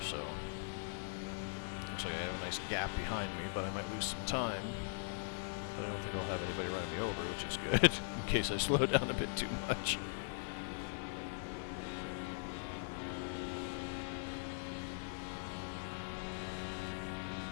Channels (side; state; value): right; silent; digital silence